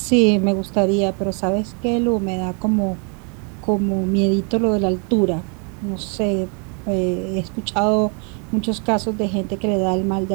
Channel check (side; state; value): left; quieter; 36.7 dB